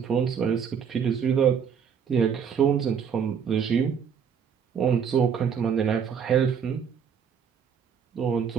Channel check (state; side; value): quieter; left; 7.3 dB